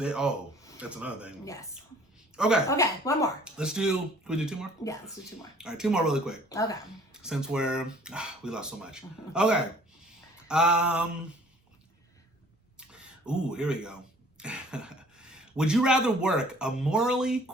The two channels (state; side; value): normal; both; correlation 0.54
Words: is. Oh, that's another thing. Yes. Okay. Okay. One more. Can we do 2 more? Yeah. Let's do 2 more. All right, 2 more really quick. Okay. Since we lost so much. Okay. Ooh, here we go. Would you rather work a morally